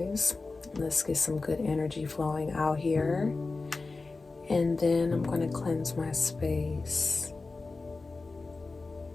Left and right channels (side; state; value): right; quieter; 3.8 dB